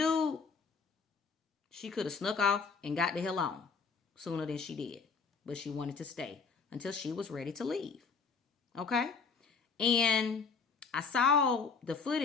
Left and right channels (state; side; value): quieter; right; 5.2 dB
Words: she could have snuck off and got the hell on sooner than she did. But she wanted to stay until she was ready to leave. Okay? And I saw the